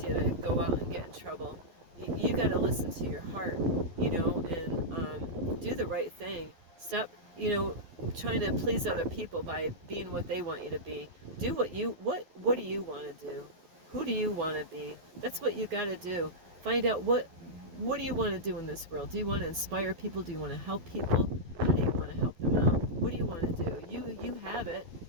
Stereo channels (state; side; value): late; left; 11 ms